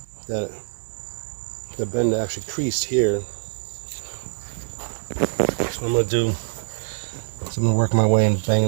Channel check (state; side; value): silent; left; digital silence